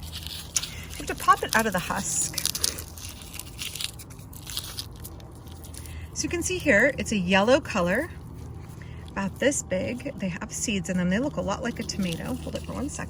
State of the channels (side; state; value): both; identical; correlation 1.00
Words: have to pop it out of the husk. So you can see here, it's a yellow color, about this big. They have seeds in them. They look a lot like a tomato. Hold it for 1